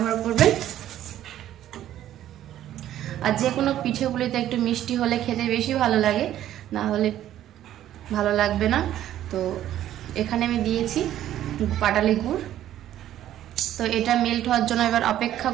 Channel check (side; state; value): left; quieter; 12.3 dB